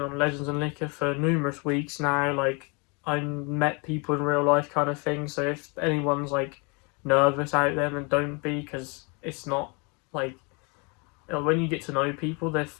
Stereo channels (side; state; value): right; quieter; 31.7 dB